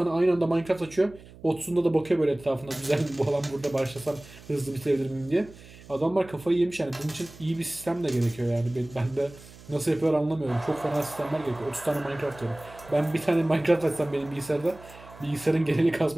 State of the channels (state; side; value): noise; right; hum, 20 dB below the sound